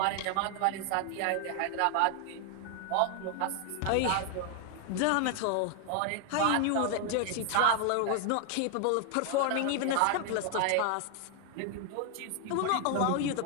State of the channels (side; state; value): both; different; correlation 0.00